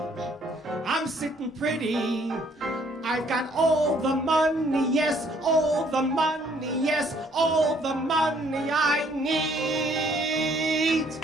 sitting pretty. I've got all the money, yes, all the money, yes, all the money I need.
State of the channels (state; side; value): normal; both; correlation 0.64